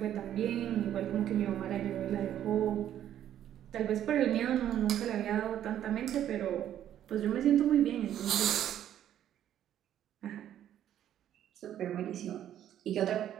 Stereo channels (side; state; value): left; quieter; 11.0 dB